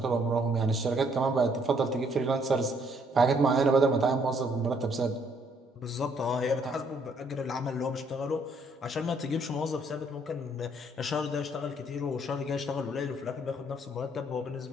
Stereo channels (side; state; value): both; normal; correlation 0.67